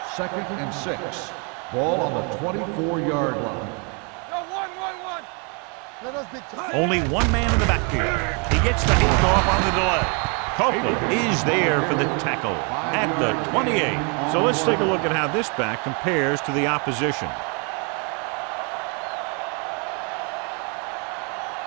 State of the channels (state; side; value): quieter; left; 35.4 dB